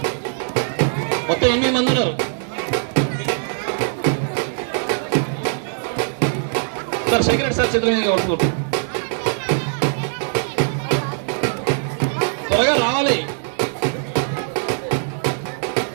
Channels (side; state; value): left; silent; digital silence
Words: మొత్తం 8 మంది ఉన్నారు. సార్ సెక్రటరీ సార్ చేతుల మీద వస్తుంది. త్వరగా రావాలి.